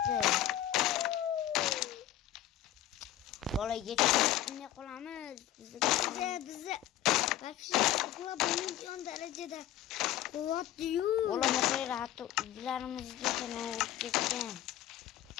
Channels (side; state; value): right; quieter; 12.7 dB